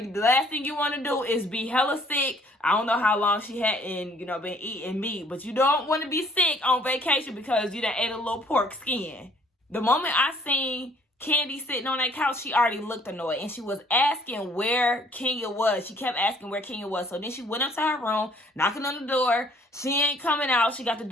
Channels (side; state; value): both; normal; correlation 0.59